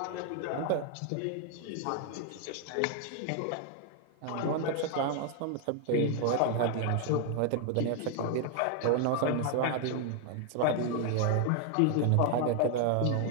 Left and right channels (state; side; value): different; both; correlation 0.00